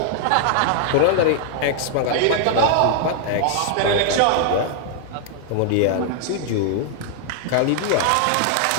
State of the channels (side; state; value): both; different; correlation 0.00